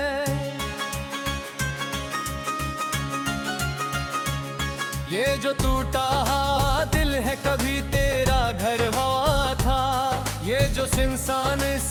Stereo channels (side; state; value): both; identical; correlation 1.00